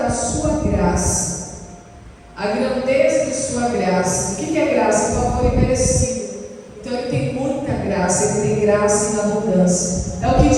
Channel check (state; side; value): identical; both; correlation 1.00